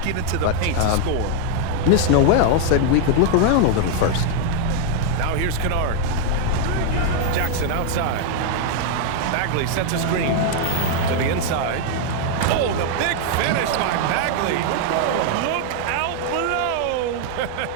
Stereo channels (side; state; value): both; different; correlation 0.00